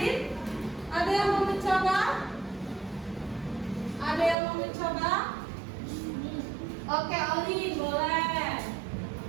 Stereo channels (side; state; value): left; drops out; at 4.4 s